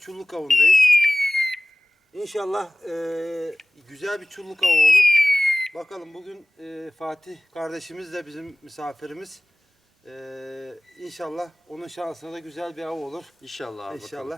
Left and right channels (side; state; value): both; normal; correlation 0.96